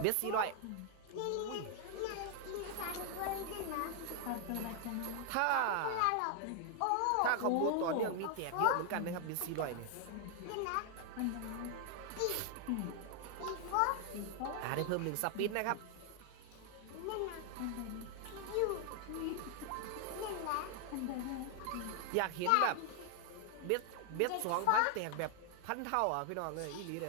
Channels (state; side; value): different; both; correlation 0.00